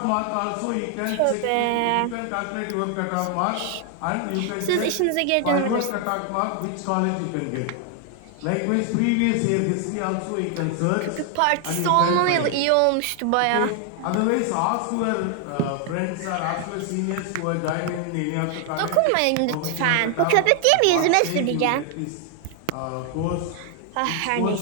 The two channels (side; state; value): both; different; correlation 0.00